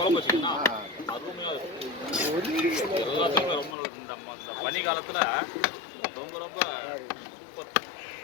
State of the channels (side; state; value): right; drops out; at 3.8 s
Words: வச்சிங்கன்னா அருமையாக இருக்கும். எல்லாத்துக்குமே ரொம்ப நல்லது. இந்த பனி காலத்தில் ரொம்ப ரொம்ப சூப்பர்.